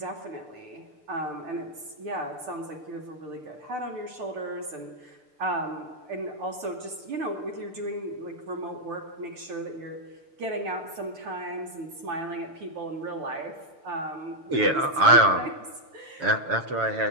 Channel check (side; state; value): left; late; 6.7 ms